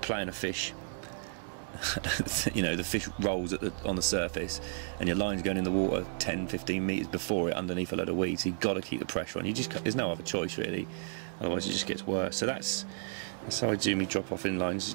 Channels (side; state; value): left; silent; 56 dB below the other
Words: a fish. You know, the fish rolls on the surface and your line's going in the water 10-15 metres before it underneath a load of weeds, so you've got to keep the pressure on. There's no other choice really, otherwise it just gets worse. So that's how I do me drop off in lines.